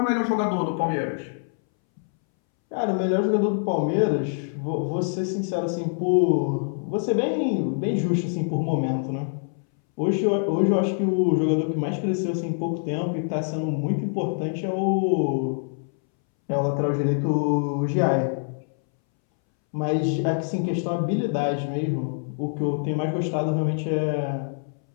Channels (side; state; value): right; silent; 62 dB below the other